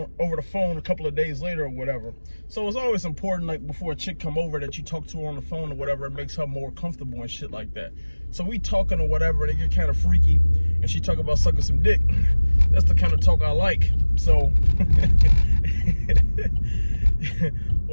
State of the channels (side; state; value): both; inverted; correlation -1.00